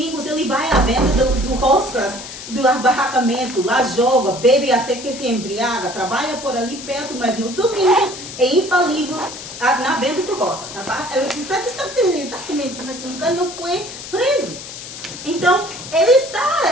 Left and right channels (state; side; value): noise; left; hiss, 11 dB below the sound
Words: ele vai à venda do roscas, do barracamento, lá joga, bebe até que se embriaga, trabalha por ali perto, mas nos domingos é infalível na venda do roscas. Está exatamente, mas nunca não foi preso. Então, ele está,